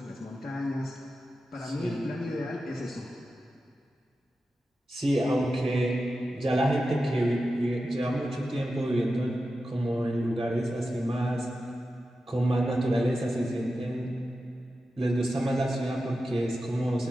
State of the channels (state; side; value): normal; both; correlation 0.91